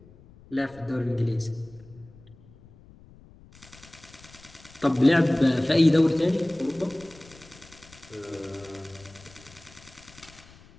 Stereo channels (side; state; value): left; noise; rumble, 23 dB below the sound